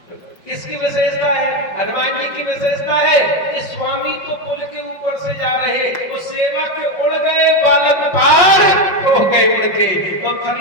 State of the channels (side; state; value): right; late; 5.5 ms